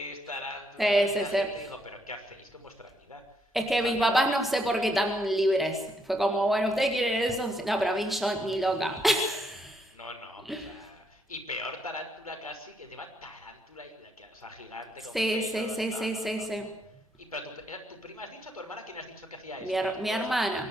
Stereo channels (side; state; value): both; normal; correlation 0.74